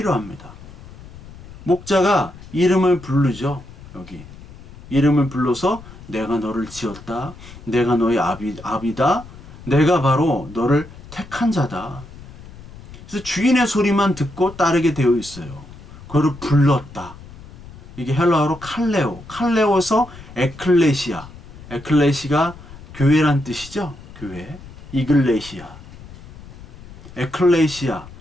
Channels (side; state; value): left; noise; rumble, 18 dB below the sound